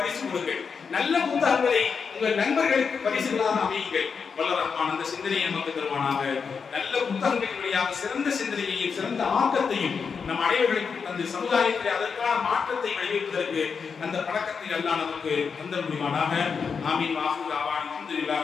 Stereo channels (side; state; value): right; quieter; 5.8 dB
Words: கொடுங்கள். நல்ல புத்தகங்களை உங்கள் நண்பர்களுக்கு பரிசுகளாக அமையுங்கள். வல்ல ரஹ்மான் அந்த சிந்தனையை நமக்கு தருவானாக. நல்ல புத்தகங்களின் வழியாக சிறந்த சிந்தனையையும் சிறந்த ஆக்கத்தையும் நம் அனைவர்களுக்கு அந்த சமுதாயத்தில் அதற்கான மாற்றத்தை விளைவிப்பதற்கு அந்த பழக்கத்தை எல்லாம் நமக்கு தந்த முடிவானாக. ஆமீன். வாஹிர் தாவானா